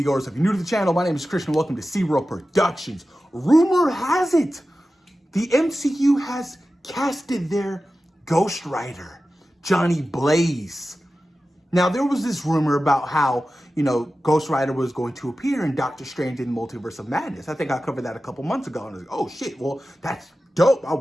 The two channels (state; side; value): normal; both; correlation 0.94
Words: If you're new to the channel, my name is Christian. Welcome to SeaWorld Productions. Rumor has it, the MCU has casted their Ghost Rider, Johnny Blaze. Now, there was this rumor about how, Ghost Rider was going to appear in Doctor Strange in the Multiverse of Madness. I think I covered that a couple months ago, and I was like, oh shit, well, that's dope. I